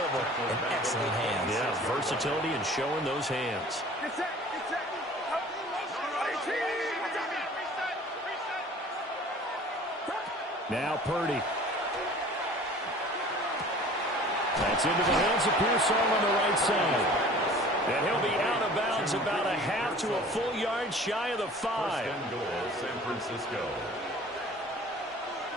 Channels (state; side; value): normal; both; correlation 0.46